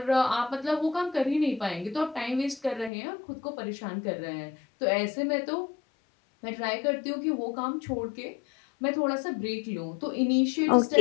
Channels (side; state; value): right; drops out; at 2.9 s